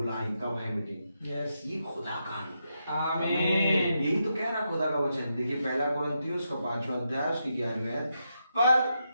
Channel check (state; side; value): inverted; both; correlation -0.84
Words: कब है मीटिंग। यस। ये खुदा का अनुग्रह है। आमीन। यही तो कह रहा खुदा का वचन। देखिए 1 कुरिन्थियों उसका 5वां अध्याय उसकी 11वीं आयत। पर